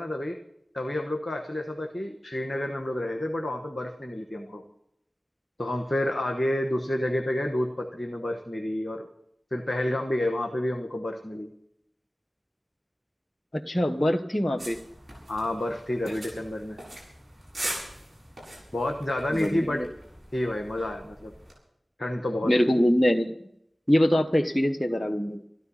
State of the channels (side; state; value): both; normal; correlation 0.96